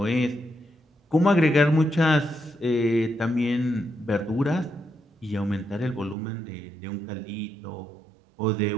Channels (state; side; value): drops out; left; at 6.2 s